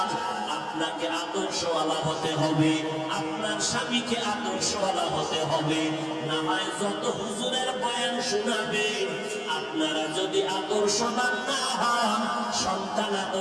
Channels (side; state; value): both; identical; correlation 1.00